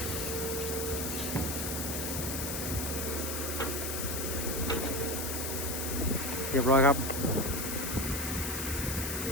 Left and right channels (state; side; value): noise; left; hiss, 3 dB below the sound